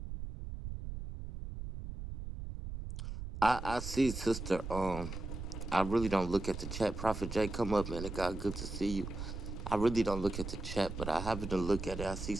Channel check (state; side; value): noise; right; rumble, 7 dB below the sound